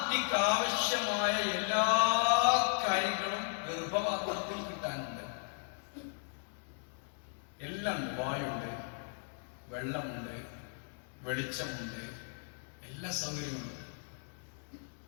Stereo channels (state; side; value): silent; right; 54 dB below the other